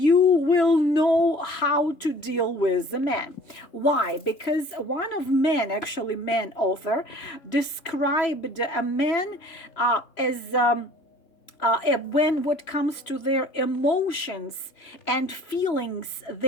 will know how to deal with the man. Why? Because one of men, actually man author, described a man as when what comes to their emotions and feelings,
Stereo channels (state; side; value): late; right; 3.0 ms